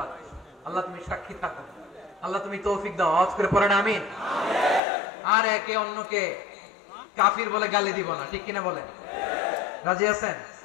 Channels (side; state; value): right; drops out; at 4.8 s